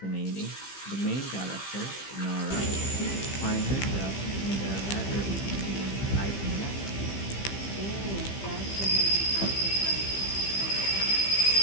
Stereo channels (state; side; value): late; right; 15 ms